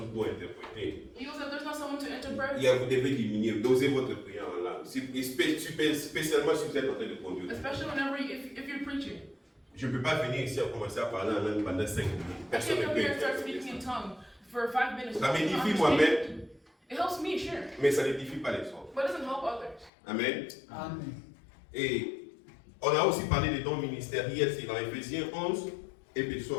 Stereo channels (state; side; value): drops out; right; at 19.9 s